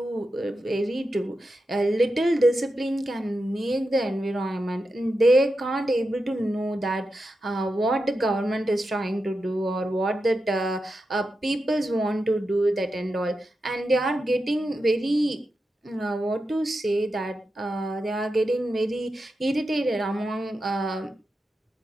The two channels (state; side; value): normal; both; correlation 0.89